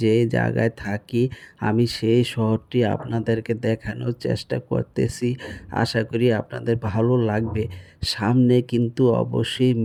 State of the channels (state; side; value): identical; both; correlation 1.00